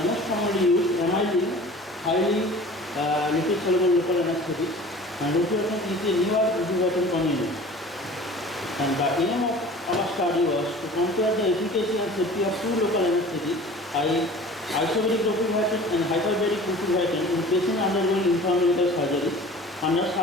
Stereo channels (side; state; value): both; normal; correlation 0.43